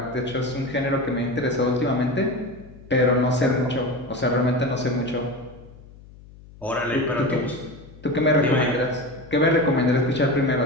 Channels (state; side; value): noise; left; hum, 21 dB below the sound